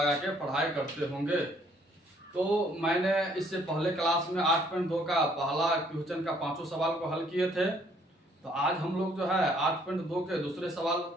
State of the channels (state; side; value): normal; both; correlation 0.64